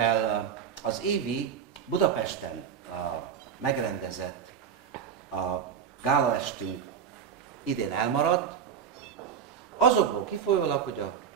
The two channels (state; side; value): quieter; left; 7.8 dB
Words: az évi Budapesten megrendezett gálaestünk idén elmaradt, azokból kifolyólag, hogy a